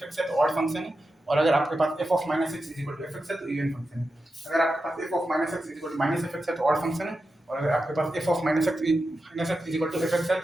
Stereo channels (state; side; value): normal; both; correlation 0.90